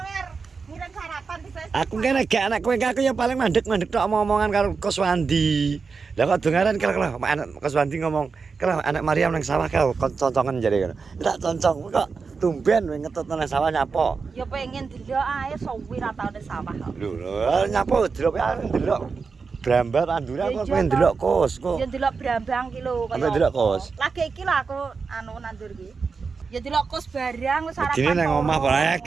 ngirim sarapan di Facebook. Aku kene gak anak kowe aku ya paling mandek-mandek tok omongan karo Koswandi. Lah kok dongaran kira-kira anak Koswandi ngomong, "Kira anak Mariam nang sawah kau concongan jare ngono." Tak concong kok tumben kowe ngetut nang sawah nyapa. Ya pengen delok ae suwi ra tau nang sawah kok. Lho, nyapa delok ae delok Brambar andure aku pengen delok kos kok. Ya delok Brambang ki lho Sampe delok kos. Lagi iki lho aku nandur ki. Ya delok kos barang wis sarapan. Dene nang omah ora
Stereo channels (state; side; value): quieter; left; 5.0 dB